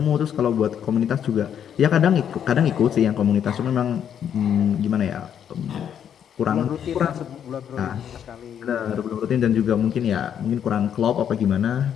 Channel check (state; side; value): quieter; right; 8.9 dB